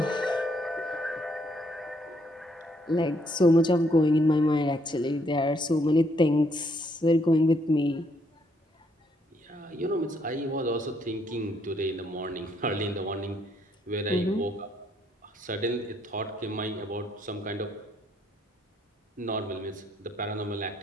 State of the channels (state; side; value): normal; both; correlation 0.71